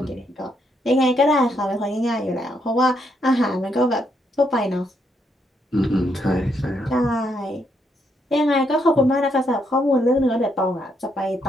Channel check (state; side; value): normal; both; correlation 0.76